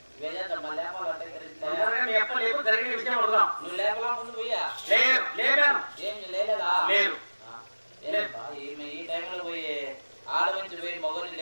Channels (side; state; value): both; inverted; correlation -1.00